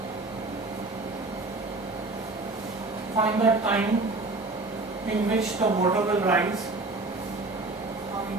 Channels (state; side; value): quieter; left; 3.2 dB